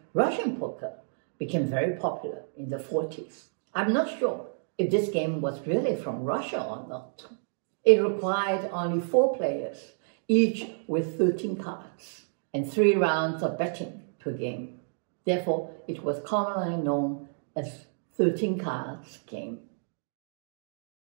Russian poker became very popular in the 40s. I'm not sure if this game was really from Russia or not. It required only 4 players, each with 13 cards, and 3 rounds of betting per game. Therefore, it was commonly known as 13 cards game.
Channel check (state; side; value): silent; left; digital silence